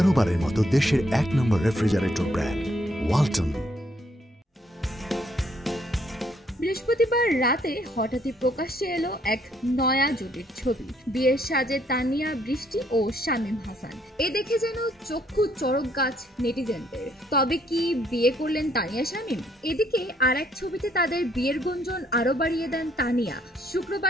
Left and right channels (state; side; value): normal; both; correlation 0.69